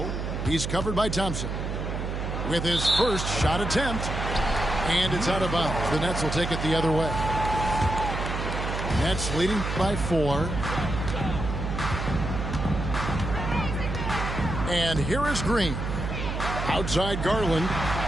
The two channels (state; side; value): noise; right; hum, 3 dB below the sound